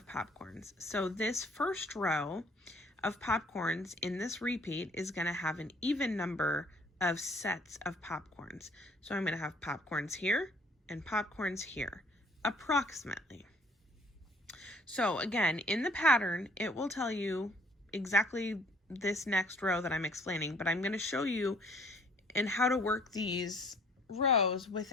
popcorns. So this first row of popcorns in this repeat is going to have an even number of sets of popcorns. So I'm going to have popcorns here and popcorns here, approximately. So again, in the pattern, it will tell you exactly this next row that I'm explaining, but I'm going to show you and how to work these rows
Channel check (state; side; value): normal; both; correlation 0.58